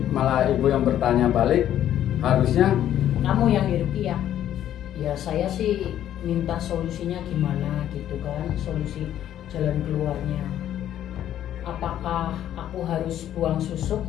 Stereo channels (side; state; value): right; quieter; 11.4 dB